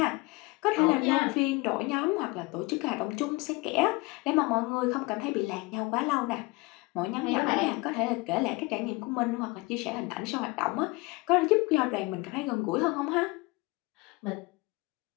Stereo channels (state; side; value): quieter; right; 24.5 dB